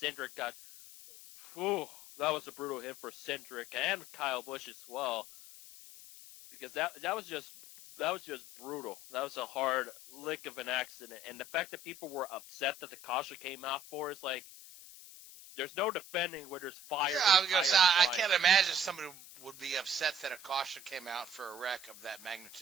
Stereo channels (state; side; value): noise; left; hiss, 17 dB below the sound